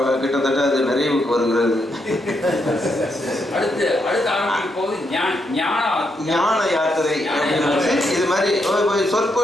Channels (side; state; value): both; normal; correlation 0.80